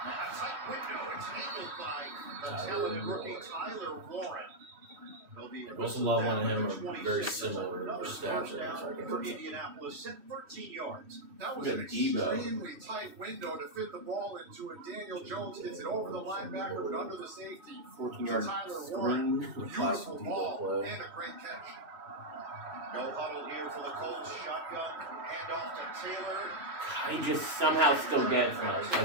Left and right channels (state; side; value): late; left; 2.8 ms